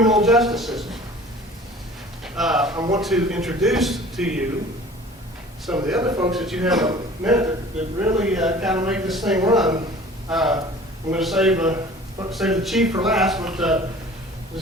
justice system. I want to introduce to you some of the other folks that you have met that really kind of make this thing run. I'm going to save the chief for last, but I'm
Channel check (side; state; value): both; normal; correlation 0.45